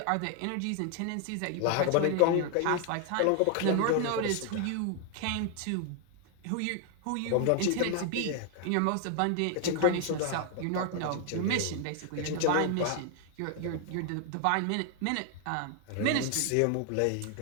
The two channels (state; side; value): different; both; correlation 0.00